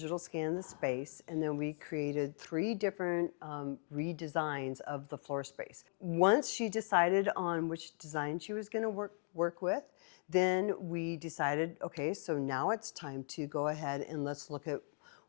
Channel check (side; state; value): right; silent; 52 dB below the other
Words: scan of the space, and then we created 3 different redesigns of the floor space. Once she decided on which design she was gonna work with, then we decided, okay, so now it's time to go ahead and let's look at